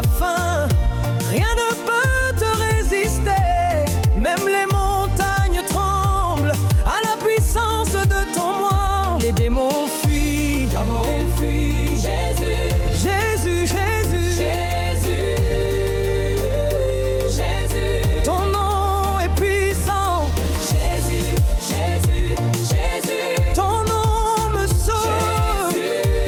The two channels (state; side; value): identical; both; correlation 1.00